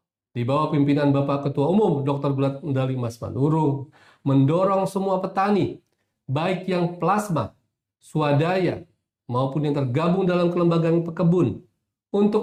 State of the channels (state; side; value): identical; both; correlation 1.00